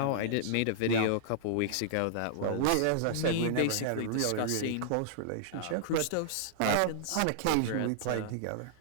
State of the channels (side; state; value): both; different; correlation -0.01